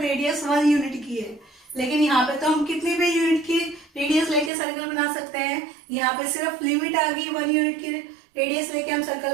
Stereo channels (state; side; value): drops out; left; at 4.5 s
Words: 1 यूनिट की है। लेकिन यहाँ पे तो हम कितनी भी यूनिट की रेडियस लेके सर्कल बना सकते हैं। यहाँ पे सिर्फ लिमिट आ गई 1 यूनिट की रेडियस लेके हम सर्कल